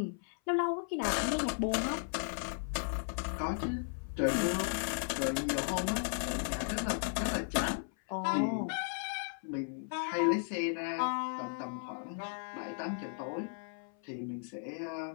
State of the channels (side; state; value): right; silent; 54 dB below the other